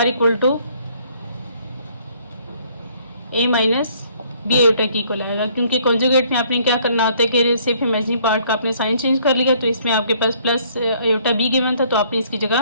equal to a minus b iota की इक्वल आएगा। क्योंकि कॉन्जुगेट में आपने क्या करना होता है कि सिर्फ इमेजिनरी पार्ट का आपने साइन चेंज कर लिया, तो इसमें आपके पास प्लस आयोटा b गिवन था, तो आपने इसकी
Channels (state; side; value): inverted; both; correlation -0.62